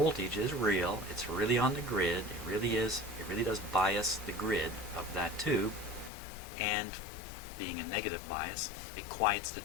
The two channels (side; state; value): right; drops out; at 6.1 s